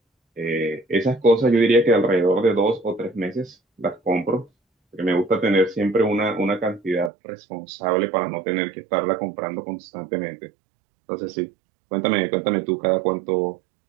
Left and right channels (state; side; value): drops out; left; at 7.1 s